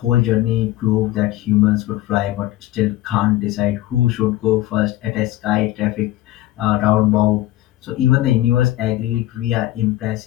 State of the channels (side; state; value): right; quieter; 15.3 dB